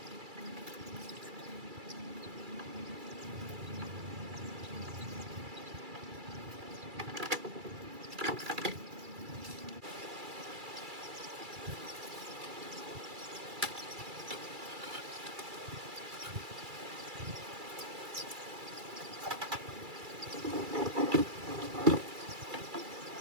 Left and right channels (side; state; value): left; late; 2.3 ms